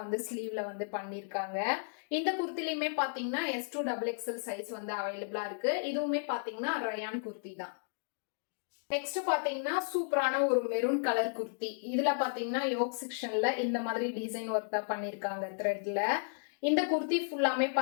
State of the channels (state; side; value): silent; right; digital silence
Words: வந்து ஸ்லீவ்ல வந்து பண்ணிருக்காங்க. இந்த குர்த்திலயுமே பாத்தீங்கன்னா S2XXL சைஸ் வந்து அவைலபிளா இருக்கு. இதுவுமே பாத்தீங்கன்னா ரயான் குர்த்தி தான். நெக்ஸ்ட் பாத்தீங்கன்னா சூப்பரான ஒரு மெரூன் கலர் குர்த்தி. இதுல பாத்தீங்கன்னா யோக் செக்ஷன்ல இந்த மாதிரி டிசைன் ஒர்க் தான் பண்ணிருக்காங்க த்ரெட்ல. இந்த குர்த்தி ஃபுல்லாமே